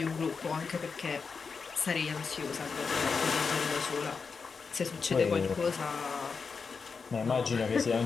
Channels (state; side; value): quieter; right; 5.2 dB